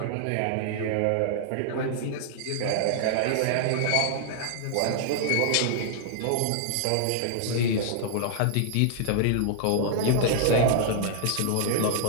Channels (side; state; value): both; different; correlation -0.01